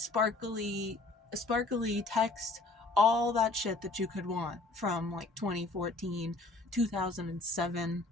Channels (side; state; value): right; quieter; 3.2 dB